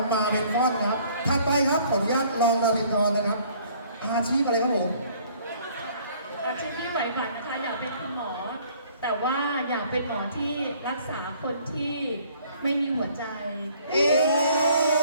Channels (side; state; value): both; inverted; correlation -0.58